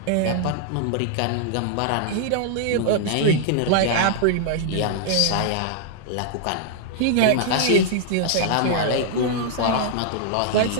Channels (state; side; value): different; both; correlation -0.01